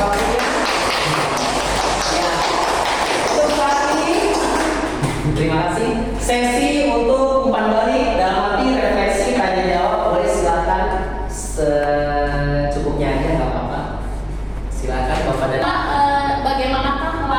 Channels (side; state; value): both; identical; correlation 1.00